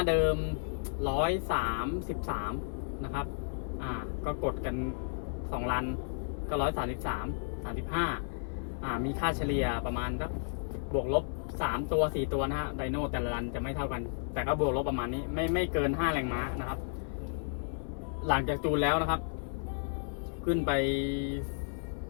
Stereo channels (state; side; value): silent; right; 56 dB below the other